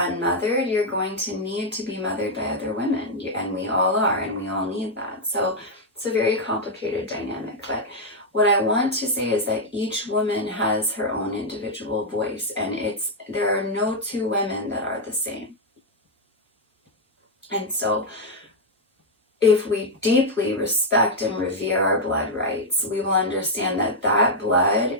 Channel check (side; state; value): both; normal; correlation -0.01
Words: unmothered, you're going to need to be mothered by other women, and we all are, and we all need that. So it's a very complicated dynamic. But what I want to say is that each woman has her own individual voice, and there are no two women that are the same. And so if we deeply respect and revere our blood rights, we will understand that that blood,